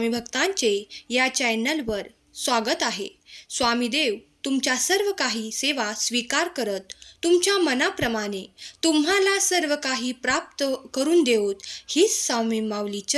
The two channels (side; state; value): both; identical; correlation 1.00